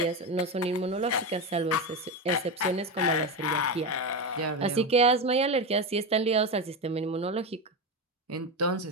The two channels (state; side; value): normal; both; correlation 0.16